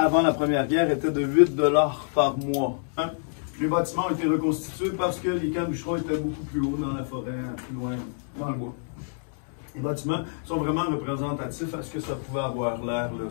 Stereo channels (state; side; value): silent; right; 60 dB below the other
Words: la Première Guerre, était de 8 $ par mois. Les bâtiments ont été reconstitués parce que les camps de bûcherons étaient beaucoup plus hauts dans la forêt, plus loin dans le bois. Les bâtiments sont vraiment représentatifs à ce que ça pouvait avoir l'air,